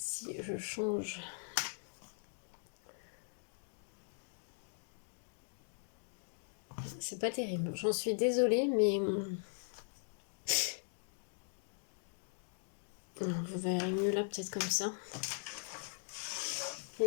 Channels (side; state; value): right; silent; digital silence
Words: je change. C'est pas terrible. J'en suis désolée, mais vous verrez mieux là, peut-être comme ça.